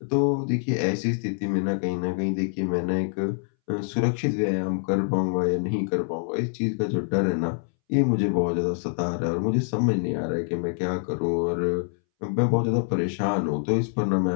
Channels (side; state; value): right; silent; 61 dB below the other